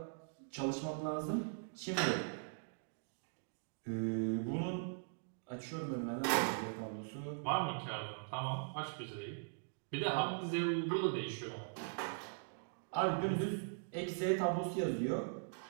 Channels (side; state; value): left; silent; digital silence